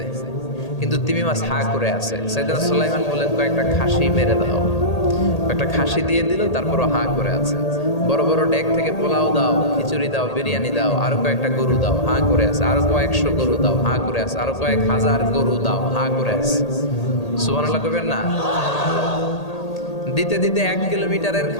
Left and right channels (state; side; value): late; right; 1.8 ms